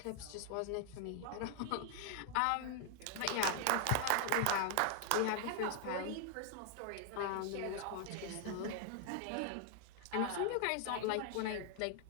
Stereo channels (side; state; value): both; different; correlation 0.00